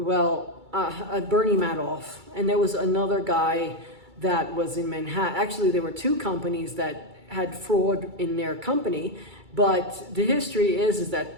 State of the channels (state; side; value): late; left; 2.3 ms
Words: and there was another guy that was in Manhattan. Actually, there were 2 companies that had fraud in their company, but the history is